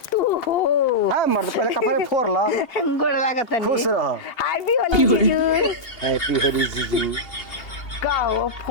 तू हो। हाँ मर्द पहले कपड़े फोड़ ला। गोड़ लागत नहीं। खुश रहो। हैप्पी होली जीजू। हैप्पी होली जीजू। कहो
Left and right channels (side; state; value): right; late; 2.8 ms